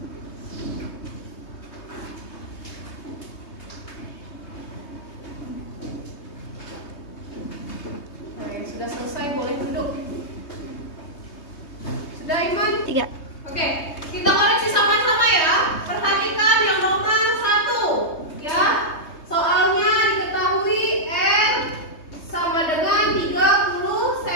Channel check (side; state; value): right; late; 3.2 ms